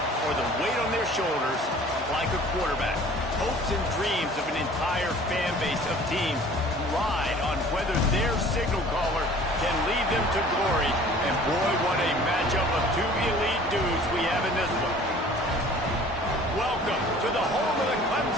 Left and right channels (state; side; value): normal; both; correlation 0.49